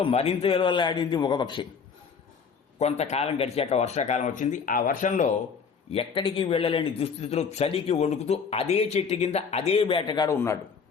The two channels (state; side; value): quieter; right; 5.9 dB